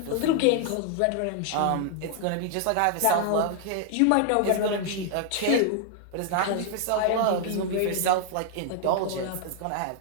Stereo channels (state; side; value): different; both; correlation 0.00